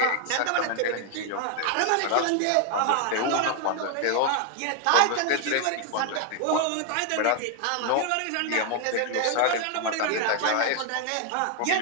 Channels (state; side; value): different; both; correlation 0.00